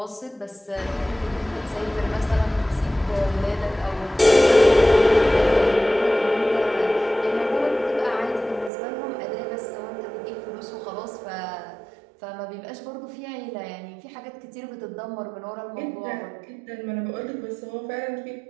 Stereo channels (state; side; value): drops out; left; at 8.7 s